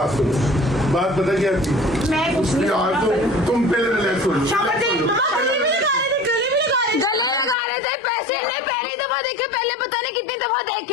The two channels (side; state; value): right; drops out; at 7.6 s